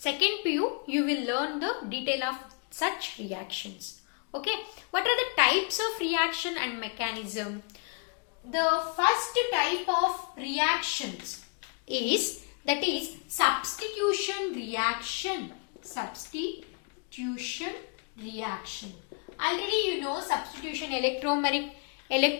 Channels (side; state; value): right; quieter; 37.5 dB